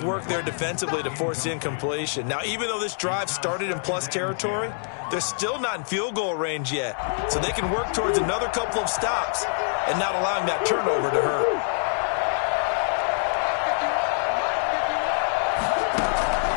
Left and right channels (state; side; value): silent; right; digital silence